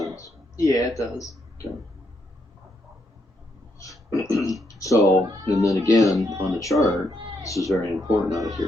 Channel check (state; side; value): normal; both; correlation 0.78